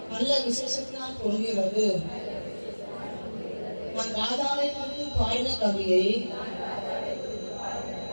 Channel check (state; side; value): inverted; both; correlation -1.00